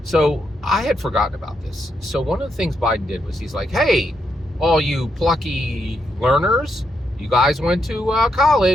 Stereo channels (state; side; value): normal; both; correlation 0.80